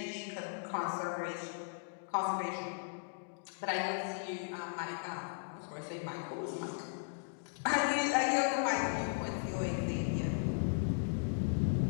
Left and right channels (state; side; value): silent; right; digital silence